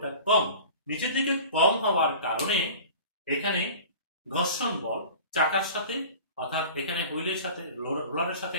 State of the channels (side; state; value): both; inverted; correlation -0.40